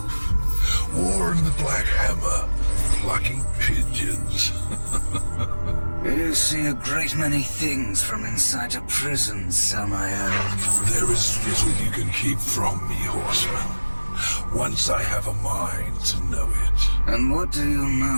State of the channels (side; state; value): both; inverted; correlation -1.00